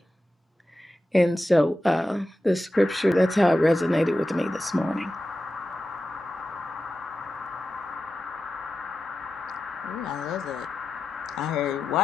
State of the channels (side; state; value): both; normal; correlation 0.92